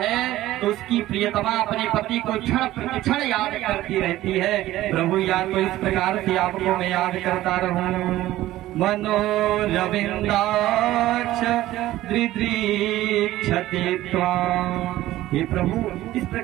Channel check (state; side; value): quieter; left; 15.3 dB